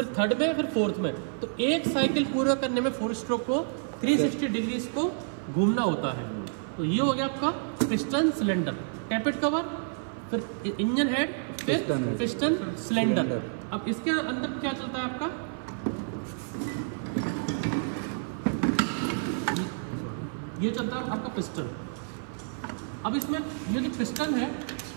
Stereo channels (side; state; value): left; silent; 55 dB below the other